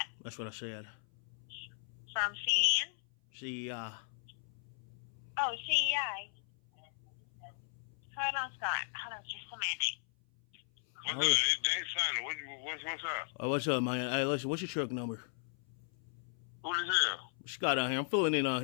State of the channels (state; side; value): silent; right; 53 dB below the other